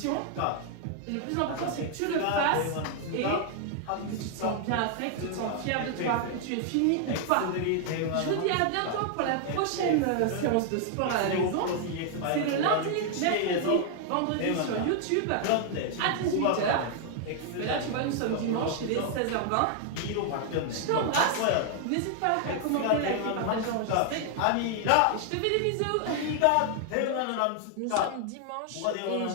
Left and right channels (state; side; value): different; both; correlation 0.00